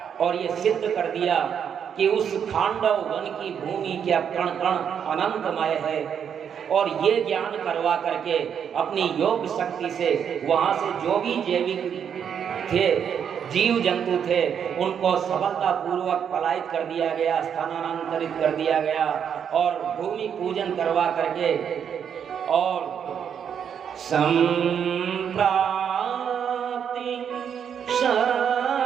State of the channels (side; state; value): left; quieter; 8.0 dB